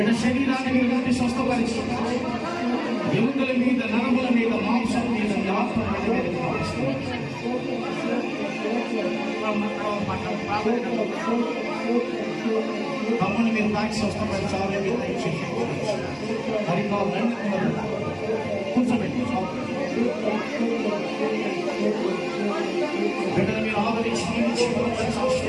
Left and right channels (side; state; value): both; identical; correlation 1.00